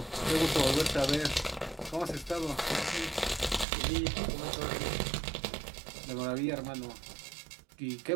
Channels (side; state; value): left; drops out; at 3.7 s